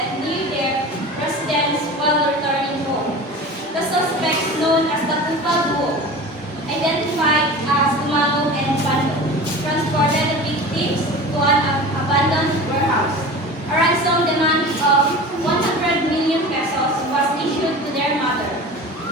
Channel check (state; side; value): normal; both; correlation 0.35